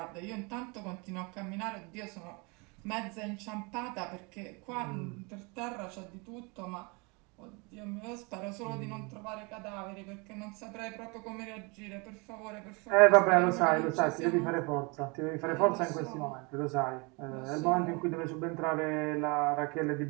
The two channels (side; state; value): left; quieter; 29.4 dB